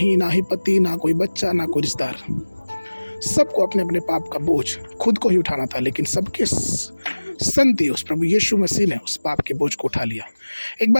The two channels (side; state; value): both; inverted; correlation -1.00